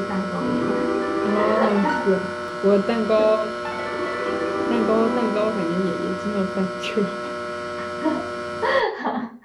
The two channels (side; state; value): both; identical; correlation 1.00